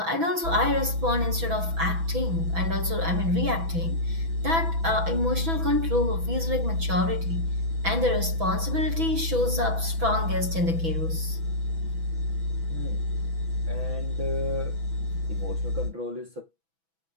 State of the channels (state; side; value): late; left; 6.1 ms